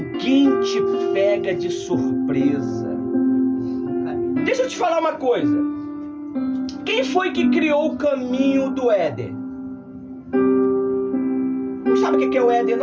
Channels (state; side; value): identical; both; correlation 1.00